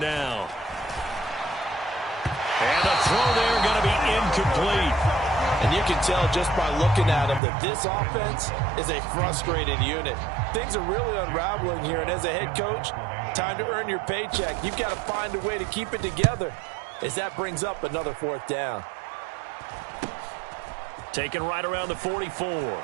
And the throw there going to be incomplete. And you can tell just by looking at him that this offense is a frustrated unit. Things are really unraveling here, and as a head coach, time to earn your paycheck. You've got to find a way to keep it together, as that brings up another fourth down. Taken right around the 44.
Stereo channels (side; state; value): left; drops out; at 7.4 s